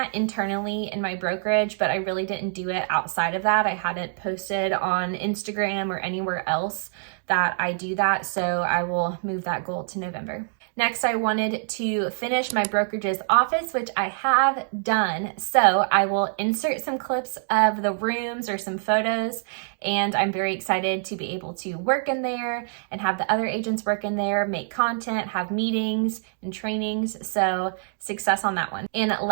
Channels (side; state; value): left; silent; digital silence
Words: internally in my brokerage, but I really didn't do it outside of that. I hadn't posted on Instagram or anywhere else that I do that, so I will move that goal to November. Next, I wanted to finish my brokerage's office, which I have done. So I will insert some clips of the rooms or some photos and I'm very excited to be able to work in there and have the other agents work in there, make content, have meetings and trainings. So success on that one. And